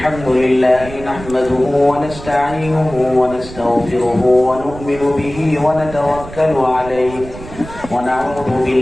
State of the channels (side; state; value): right; noise; rumble, 14 dB below the sound